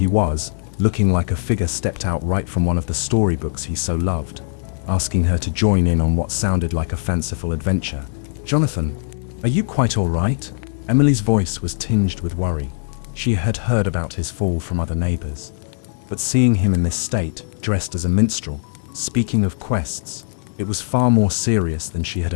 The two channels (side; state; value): right; silent; digital silence